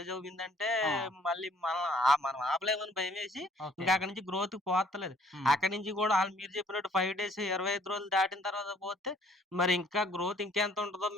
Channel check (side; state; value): both; normal; correlation 0.59